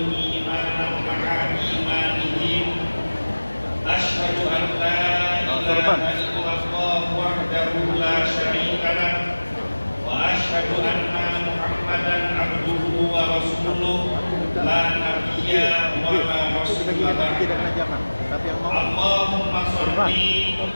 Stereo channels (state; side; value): inverted; both; correlation -1.00